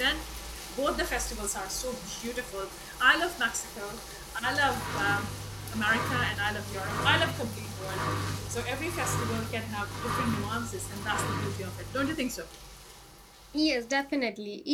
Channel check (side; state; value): both; identical; correlation 1.00